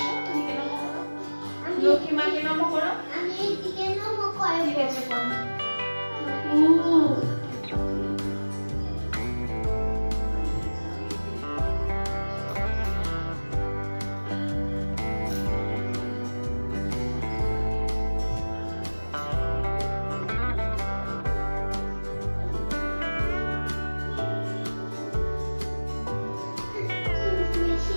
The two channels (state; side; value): inverted; both; correlation -1.00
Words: এদিকে নমো করো, লক্ষ্মী মাকে নমো করো। আমি এইদিকে নমো করব। ঠিক আছে, করো।